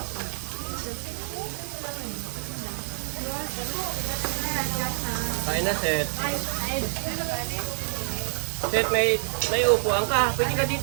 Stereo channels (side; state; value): left; silent; digital silence